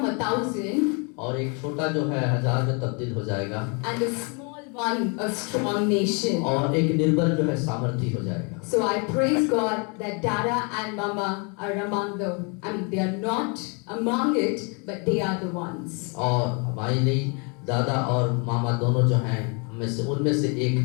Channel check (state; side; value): quieter; right; 34.5 dB